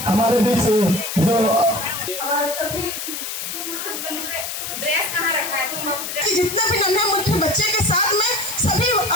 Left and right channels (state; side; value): noise; left; hiss, 6 dB below the sound